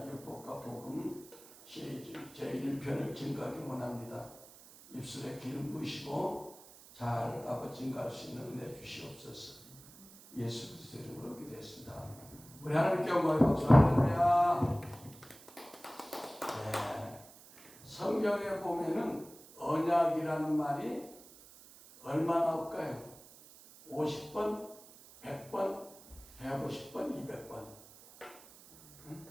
복음 시리즈 제1편을 증거하기 원합니다. 입술에 기름 부으시고 잘 아버지 증거할 수 있는 은혜 주시옵소서. 예수 그리스도 이름으로 기도했습니다. 우리 하나님께 영광의 박수. 할렐루야. 네. 성경에 보면은 언약이라는 말이 얼마나 올까요? 50번, 100번, 150번, 200번.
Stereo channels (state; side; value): noise; right; hiss, 20 dB below the sound